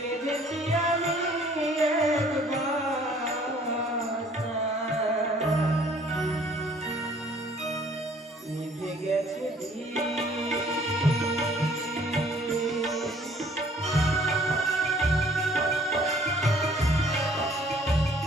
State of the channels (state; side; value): normal; both; correlation 0.57